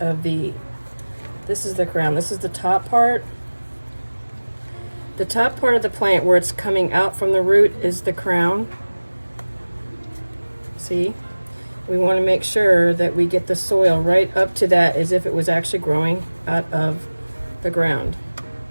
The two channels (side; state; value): both; inverted; correlation -1.00